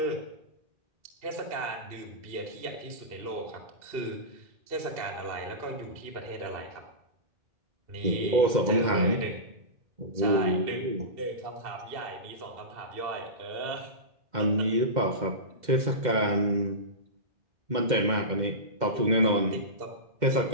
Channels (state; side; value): late; left; 2.1 ms